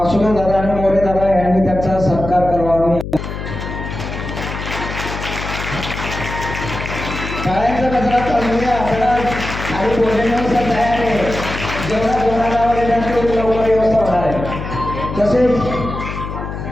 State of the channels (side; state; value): left; noise; hum, 7 dB below the sound